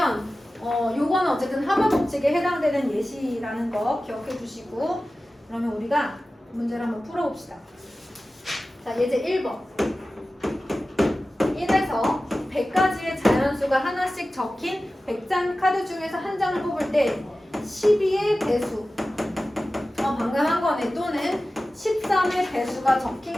요거는 어쨌든 합의 법칙에 해당되는 예시라는 거 기억해 주시고, 그러면 우리가 문제를 한번 풀어봅시다. 자, 예제 1번. 1에서 100가지의 자연수가 하나씩 적힌 100장 카드 중에서 한 장을 뽑을 때 12의 배수, 방금 한 거네, 또는 13의 배수가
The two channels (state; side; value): normal; both; correlation 0.95